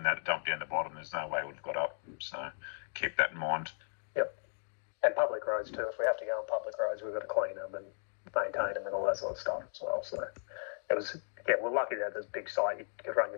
that dump down the bottom, there's no way we've got up. So keep that in mind. Yep. And public roads too. If we have to go on public roads, we've got to clean them and maintain them and all that sort of stuff as well. So it was, we're lucky that this big site, you could run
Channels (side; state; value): right; silent; digital silence